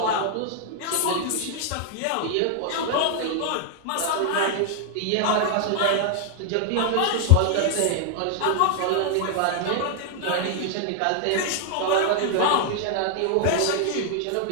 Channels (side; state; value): both; different; correlation 0.00